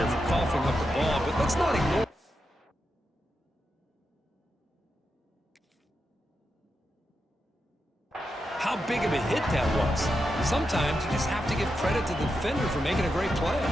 for coughing up the ball, but let's not ignore how big of a hit that was. Sometimes you just have to give credit to the defender for making a great play.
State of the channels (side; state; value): both; normal; correlation 0.87